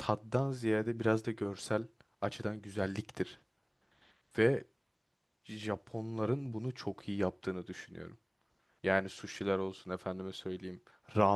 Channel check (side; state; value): both; identical; correlation 1.00